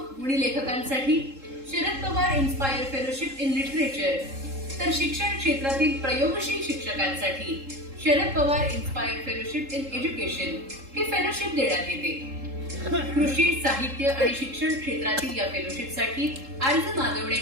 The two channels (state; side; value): late; left; 3.7 ms